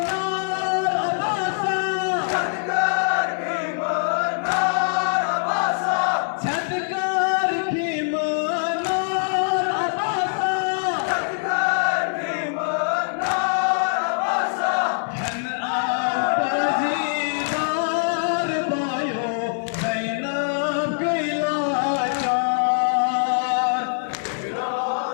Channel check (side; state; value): right; silent; 60 dB below the other